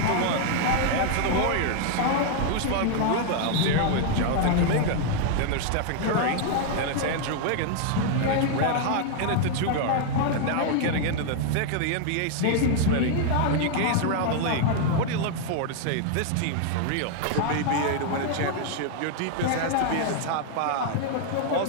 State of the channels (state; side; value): different; both; correlation 0.00